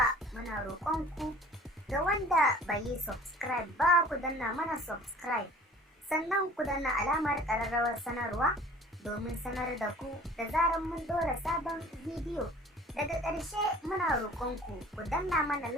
muna roƙonku ga wanda bai yi subscribe ba, ku danna mana subscribe, sannan ku danna alamar ƙararrawar sanarwa domin sanar da ku da zarar mun ɗora sabon bidiyo. Daga ƙarshe muna roƙonku ku danna mana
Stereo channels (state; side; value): normal; both; correlation 0.47